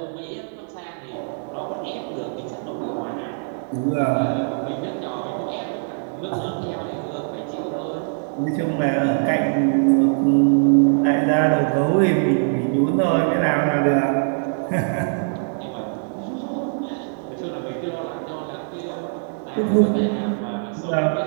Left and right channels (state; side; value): silent; left; digital silence